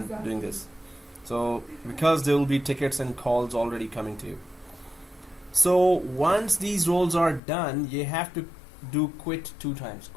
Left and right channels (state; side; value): drops out; right; at 7.4 s